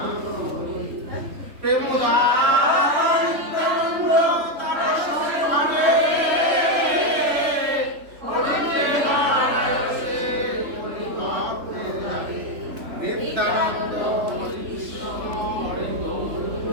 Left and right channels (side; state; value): left; late; 3.4 ms